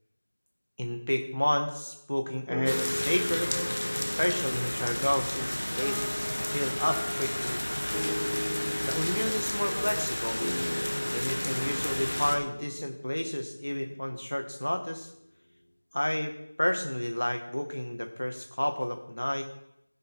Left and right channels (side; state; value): both; inverted; correlation -1.00